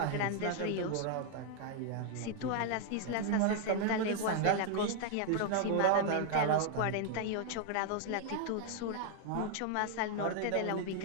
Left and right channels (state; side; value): different; both; correlation 0.00